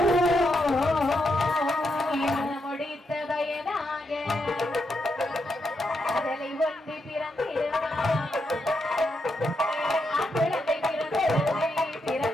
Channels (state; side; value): normal; both; correlation 0.82